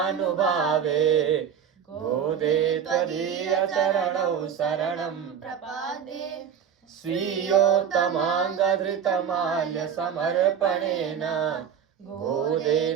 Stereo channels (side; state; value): left; quieter; 8.0 dB